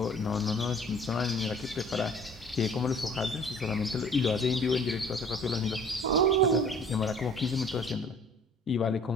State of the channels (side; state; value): both; normal; correlation 0.51